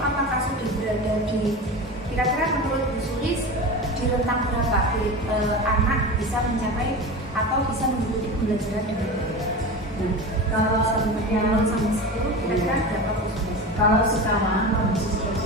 apakah sudah berada di kira-kira menurut Bu Sulis di rentang berapa anak bisa mencapai atau bisa mengikuti pembelajaran dengan baik? Kalau yang sampai 10 kira-kira berapa Bu Sulis? Kalau sekarang kondisi seperti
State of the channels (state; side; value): normal; both; correlation 0.28